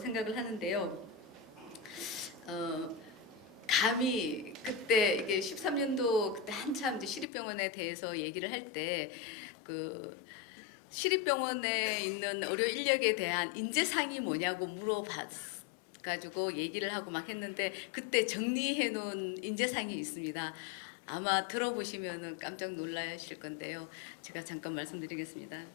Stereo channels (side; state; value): right; drops out; at 7.2 s